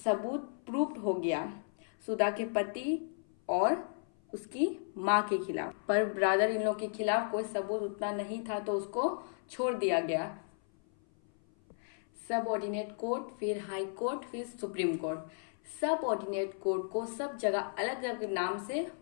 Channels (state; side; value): silent; right; 55 dB below the other